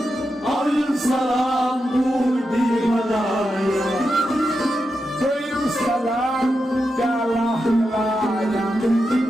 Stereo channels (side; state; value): both; normal; correlation 0.88